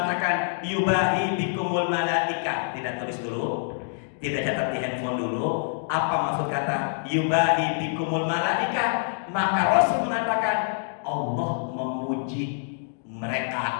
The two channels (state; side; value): silent; right; digital silence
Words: yubahi bikumul malaika. Tidak tulis dulu, tidak catat di handphone dulu. Apa maksud kata yubahi bikumul malaika? Maka Rasul mengatakan Allah memuji